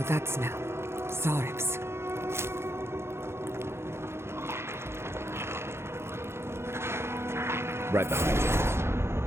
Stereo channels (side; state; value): left; late; 0.12 ms